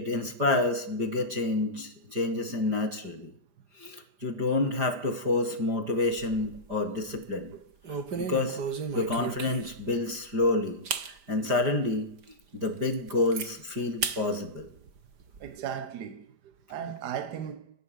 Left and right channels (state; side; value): late; left; 5.0 ms